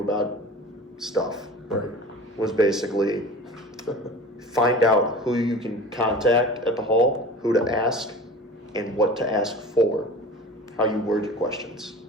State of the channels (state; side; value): normal; both; correlation 0.38